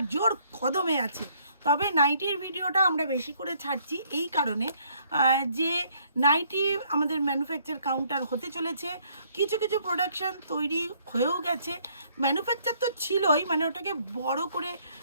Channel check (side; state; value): both; inverted; correlation -0.65